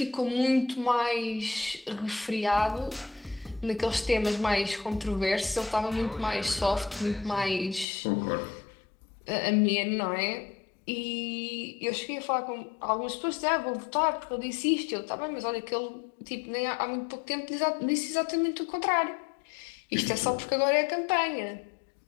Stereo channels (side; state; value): right; drops out; at 7.9 s